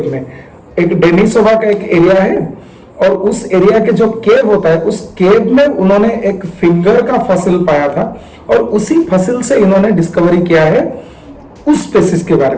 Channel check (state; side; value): identical; both; correlation 1.00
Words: में। एक डेनिसोवा का एक एरिया है और उस एरिया के जो केव होता है उस केव में उन्होंने एक फिंगर का फसिल पाया था, और उसी फसिल से इन्होंने डिस्कवरी किया है उस स्पेसिस के बारे